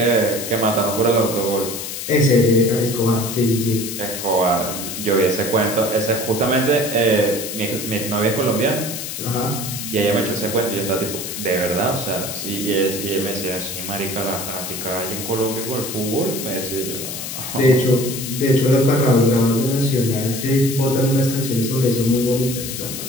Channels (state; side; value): noise; left; hiss, 7 dB below the sound